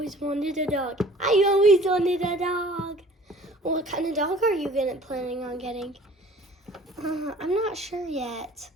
wanted a dog. What kind of dog are you planning on getting? I'm not sure yet.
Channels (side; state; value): both; normal; correlation 0.50